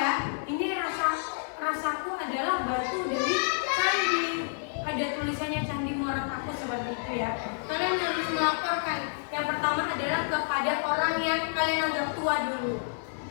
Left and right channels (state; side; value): silent; right; 58 dB below the other